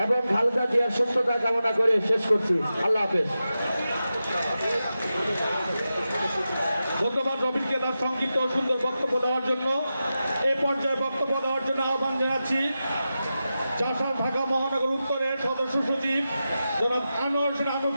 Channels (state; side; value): inverted; both; correlation -0.91